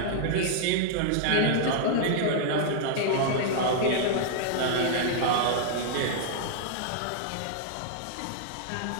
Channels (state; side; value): different; both; correlation -0.01